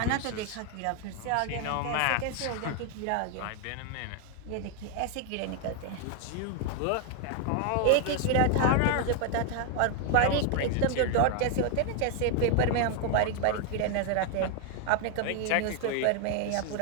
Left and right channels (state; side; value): different; both; correlation 0.00